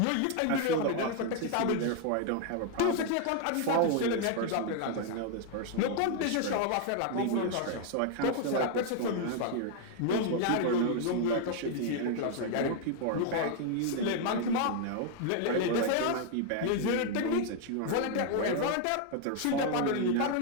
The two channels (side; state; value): both; different; correlation 0.00